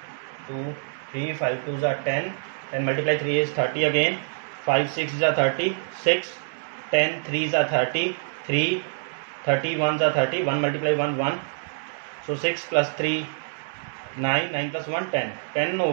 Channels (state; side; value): silent; left; digital silence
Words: 2, 3, 5 2s are 10, then multiply 3 is 30 again, 5 6s are 30, 6, 10 3s are 30, 3, 30 ones are 30, 1 multiply 1 1, so 6 plus 3 9, 9 plus 1 10, 10